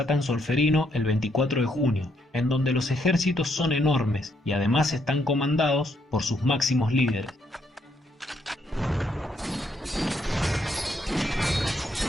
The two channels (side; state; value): both; normal; correlation 0.74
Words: en Solferino el 24 de junio, en donde los ejércitos son enormes y además están comandados por sus máximos líderes.